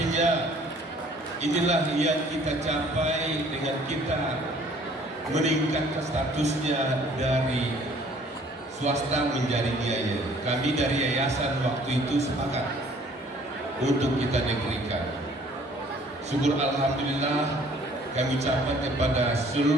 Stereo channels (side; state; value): both; normal; correlation 0.56